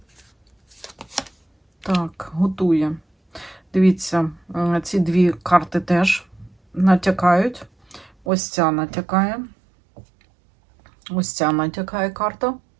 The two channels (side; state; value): left; drops out; at 8.1 s